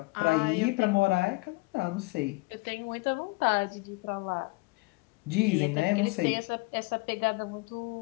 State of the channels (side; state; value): right; quieter; 26.4 dB